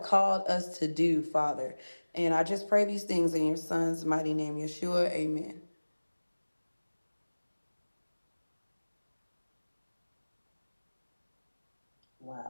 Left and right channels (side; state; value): both; inverted; correlation -1.00